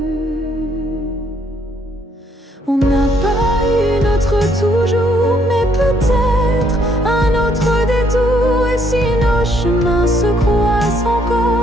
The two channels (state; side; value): normal; both; correlation 0.69